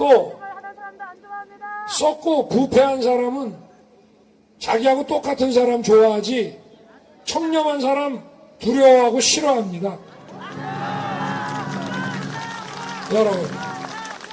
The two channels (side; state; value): both; identical; correlation 1.00